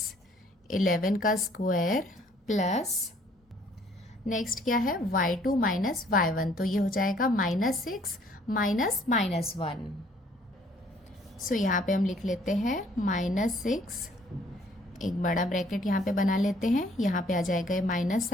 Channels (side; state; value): both; normal; correlation 0.61